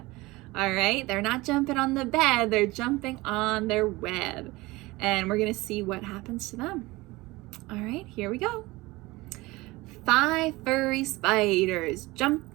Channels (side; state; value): left; quieter; 21.2 dB